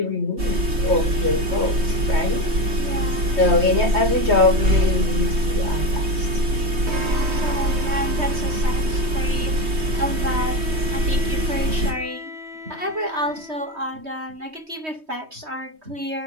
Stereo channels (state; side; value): late; left; 3.2 ms